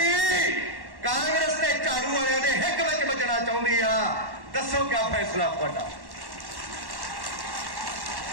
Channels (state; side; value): late; left; 1.1 ms